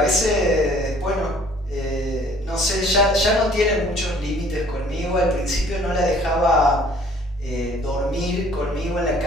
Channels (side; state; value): both; normal; correlation 0.55